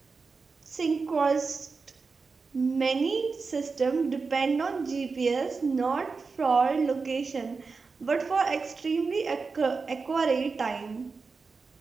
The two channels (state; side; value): quieter; left; 4.6 dB